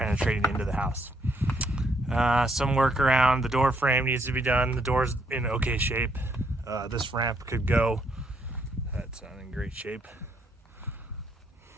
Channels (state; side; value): normal; both; correlation 0.72